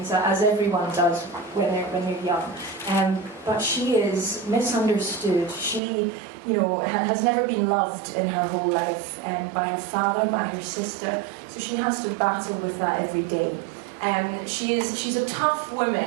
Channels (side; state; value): left; drops out; at 5.8 s